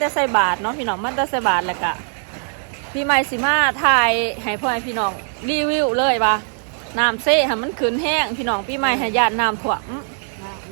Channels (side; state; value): left; silent; 57 dB below the other